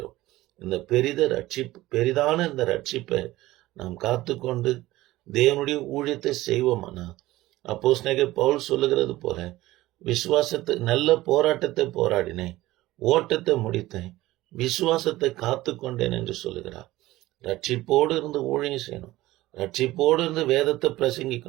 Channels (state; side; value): quieter; left; 17.3 dB